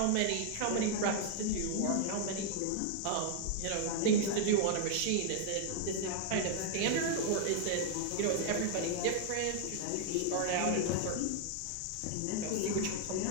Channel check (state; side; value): different; both; correlation 0.00